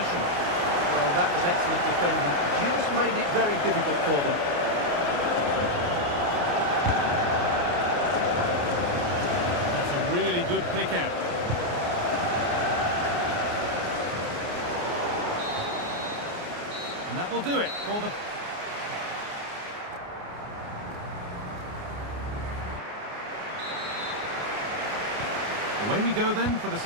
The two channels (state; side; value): late; left; 29 ms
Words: Well, that was excellent defending. Just made it very difficult for them. That's a really good pick out. And that will do it for the... Away we go then for the